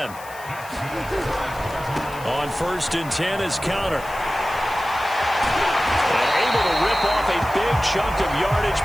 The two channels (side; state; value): left; noise; hiss, 19 dB below the sound